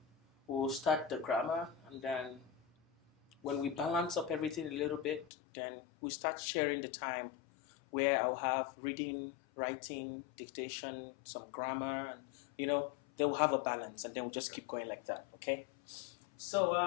we'll start the grammar, and then when we balance up everything a little bit, then we start sharing the time where I'll have reading, writing, dictation, some grammar, and they will have a balance, and then we'll just keep going like that. Okay. So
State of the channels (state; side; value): drops out; right; at 5.3 s